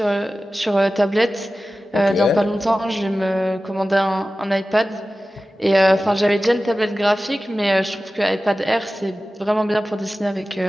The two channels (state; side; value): normal; both; correlation 0.95